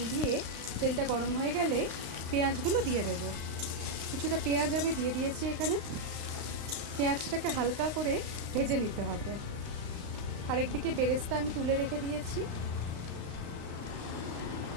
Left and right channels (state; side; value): late; left; 35 ms